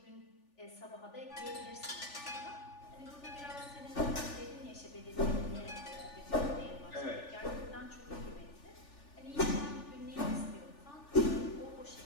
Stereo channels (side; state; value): right; late; 3.4 ms